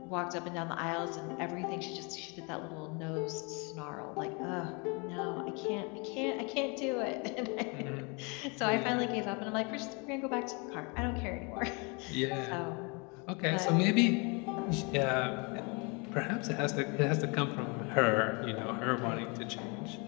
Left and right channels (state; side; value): quieter; right; 31.3 dB